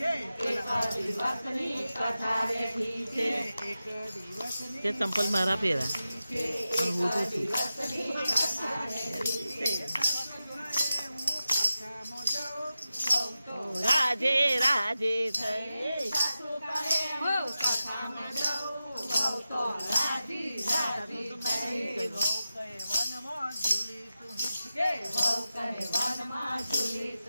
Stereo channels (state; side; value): inverted; both; correlation -0.93